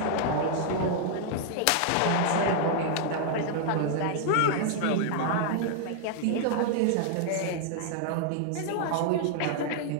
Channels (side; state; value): both; different; correlation 0.00